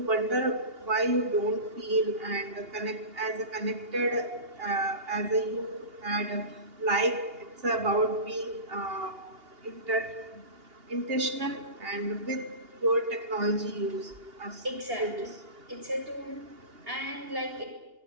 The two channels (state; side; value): late; left; 2.8 ms